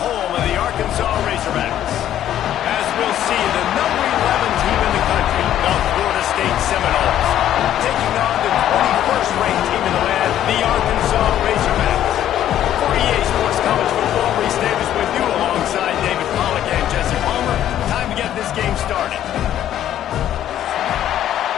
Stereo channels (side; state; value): right; quieter; 11.5 dB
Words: of the Arkansas Razorbacks. As we'll see, the number 11 team in the country, the Florida State Seminoles, taking on the 21st ranked team in the land, the Arkansas Razorbacks. For EA Sports College Football, Reese Davis with you alongside David Pollack and Jesse Palmer. Time to get this game started.